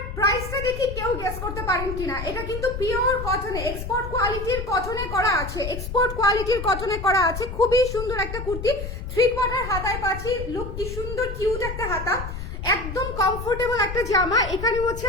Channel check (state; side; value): noise; left; rumble, 7 dB below the sound